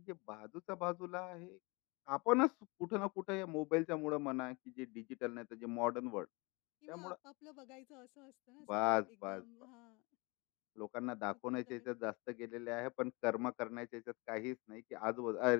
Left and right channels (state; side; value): quieter; right; 27.4 dB